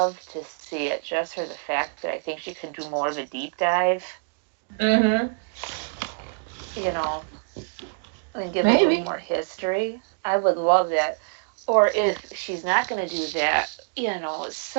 to see it just for the fact that I think she could do more of a deep dive. Mm-hmm. And give Maybe. a little more history. I would love that. Or if she's not going to do that,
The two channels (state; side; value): quieter; left; 38.0 dB